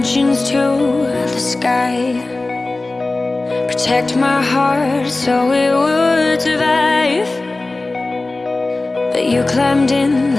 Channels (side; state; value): right; quieter; 3.1 dB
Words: to the sky. Protect my heart so it would survive. But you climbed in